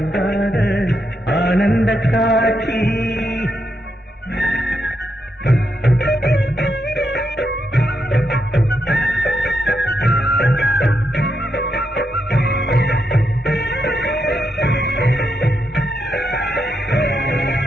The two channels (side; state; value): both; normal; correlation 0.81